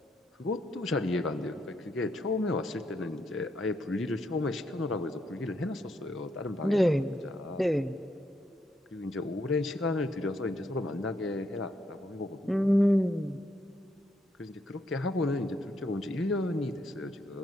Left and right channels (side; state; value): both; normal; correlation 0.77